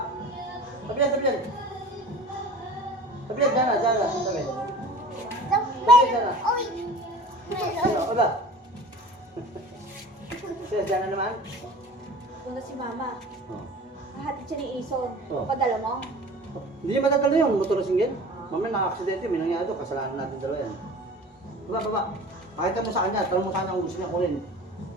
Tabi yan, tabi yan. Tabi yan, dyan na, dyan na. Tabi. Oy! Ano, oba? Siya, dyan na naman. Doon na si Mama. Oh. Hahatid siya ni Ison. Oh. Padala mo? Hindi niya matatalo yun, motor na singgil. Mamaya naka-aksidente, may nangyari doon, kasalanan natin dalawa yan. Baba, baba. Pakita mo sa kanya, tanong mo sana kung gusto niya kunin.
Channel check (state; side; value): normal; both; correlation 0.41